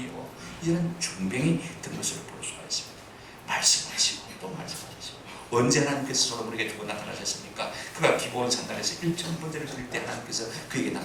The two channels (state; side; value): identical; both; correlation 1.00